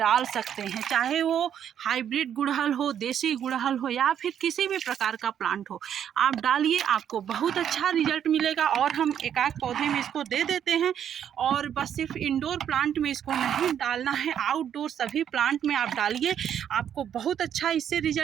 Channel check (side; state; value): left; quieter; 9.3 dB